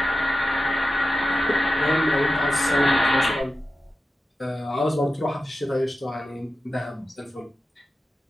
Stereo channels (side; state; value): both; normal; correlation 0.92